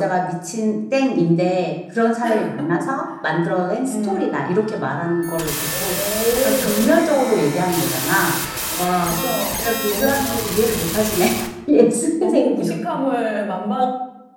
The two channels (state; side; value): identical; both; correlation 1.00